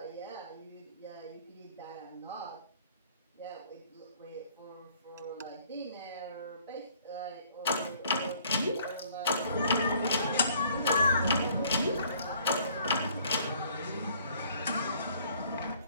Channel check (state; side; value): inverted; both; correlation -0.60